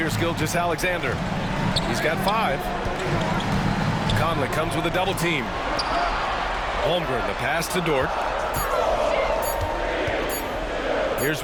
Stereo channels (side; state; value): both; identical; correlation 1.00